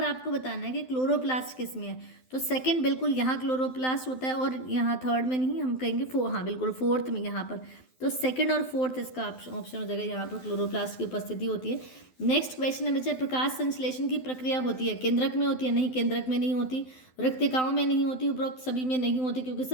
आपको बताना है कि क्लोरोप्लास्ट किस में है, तो सेकंड बिल्कुल यहाँ क्लोरोप्लास्ट होता है, और यहाँ थर्ड में नहीं, हम कहेंगे हाँ बिल्कुल फोर्थ में यहाँ पर, तो सेकंड और फोर्थ इसका ऑप्शन हो जाएगा, यहाँ पर क्लोरोप्लास्ट की उपस्थिति होती है। नेक्स्ट क्वेश्चन है बच्चे, प्रकाश संश्लेषण की प्रक्रिया होती है, केंद्रक में होती है, नहीं केंद्रक में नहीं होती, रिक्तिकाओं में नहीं होती, उपरोक्त सभी में नहीं होती, क्योंकि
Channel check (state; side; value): late; right; 12 ms